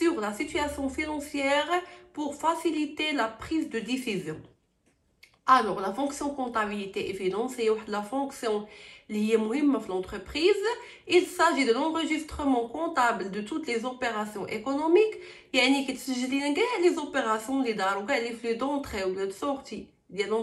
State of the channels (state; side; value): identical; both; correlation 1.00